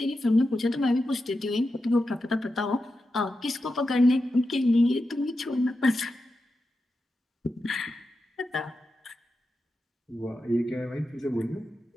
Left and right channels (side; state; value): both; normal; correlation 0.89